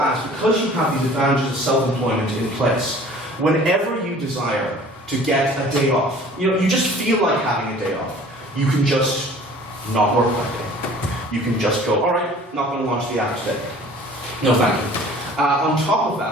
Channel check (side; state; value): both; normal; correlation 0.48